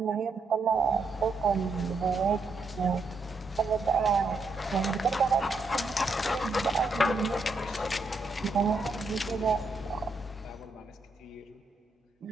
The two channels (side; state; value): left; quieter; 3.4 dB